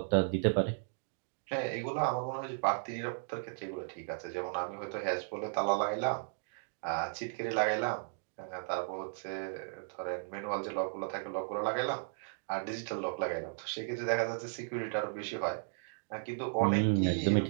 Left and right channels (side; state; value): left; silent; digital silence